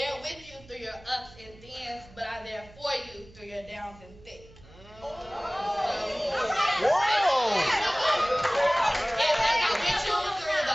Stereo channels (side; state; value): right; noise; hum, 23 dB below the sound